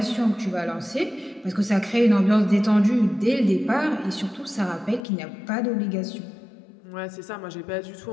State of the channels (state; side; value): drops out; right; at 5.0 s